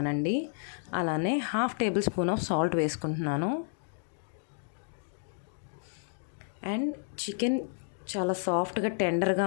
అలానే 1/2 టేబుల్ స్పూన్ ఆఫ్ సాల్ట్ వేసుకుంటున్నాను. అండ్ చికెన్ చాలా సాఫ్ట్గా టెండర్గా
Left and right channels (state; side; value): silent; right; digital silence